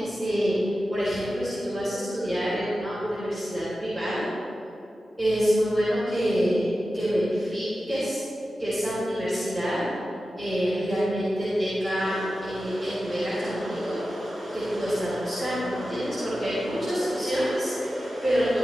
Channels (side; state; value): both; normal; correlation 0.93